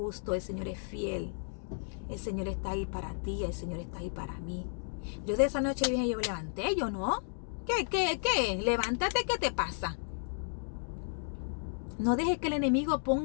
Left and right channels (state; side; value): silent; right; digital silence